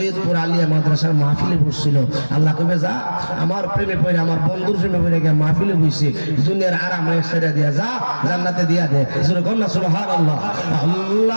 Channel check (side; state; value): both; inverted; correlation -1.00